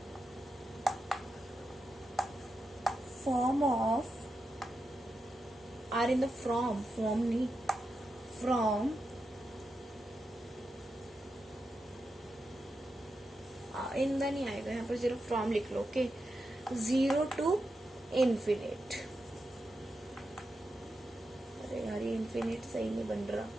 form of, are in the form नहीं, from in the नहीं आएगा, यहाँ पर सिर्फ from लिख लो. Okay, 0 to infinite. अरे यार ये इन्फिनिट सही नहीं बन रहा.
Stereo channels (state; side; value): normal; both; correlation 0.88